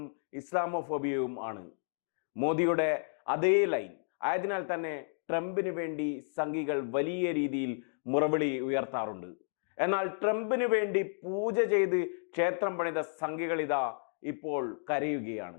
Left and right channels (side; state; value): right; silent; digital silence